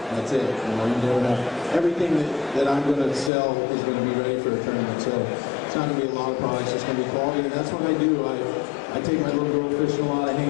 That's it. You never have. Everything that I'm going to sell is going to be ready for a tournament. So it's not going to be a lot of products. It's going to be quality, and that's what I do. I take my little girl fishing a lot. I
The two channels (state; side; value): drops out; right; at 3.3 s